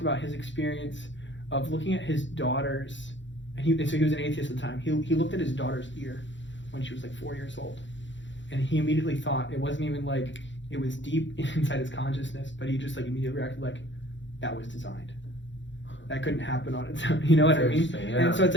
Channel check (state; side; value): late; right; 0.54 ms